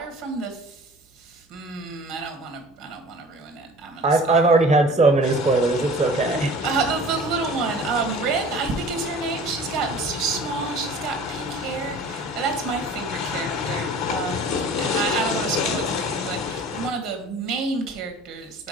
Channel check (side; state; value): both; normal; correlation 0.44